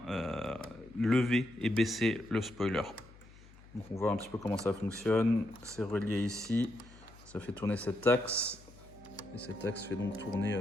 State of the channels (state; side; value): noise; left; hum, 22 dB below the sound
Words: lever et baisser le spoiler. Donc, on voit un petit peu comment ça fonctionne. C'est relié ici. Ça fait tourner cet axe. Et cet axe fait donc tourner